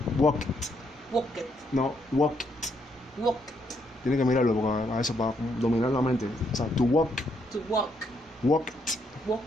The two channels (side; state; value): both; normal; correlation 0.74